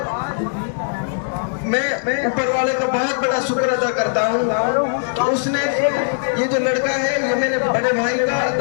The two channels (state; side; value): silent; right; digital silence